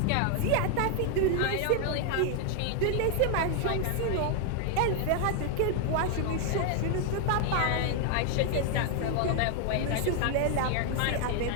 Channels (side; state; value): both; different; correlation 0.00